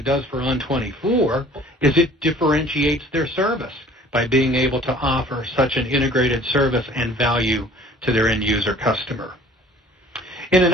does for On24, is it differentiates their service by being able to offer such an integrated service and value to their end user customer. In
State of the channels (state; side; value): normal; both; correlation 0.51